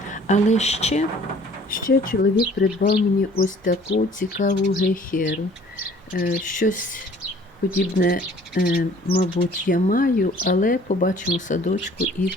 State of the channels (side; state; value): both; normal; correlation 0.53